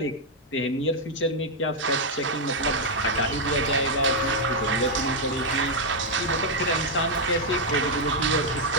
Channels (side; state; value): both; normal; correlation -0.01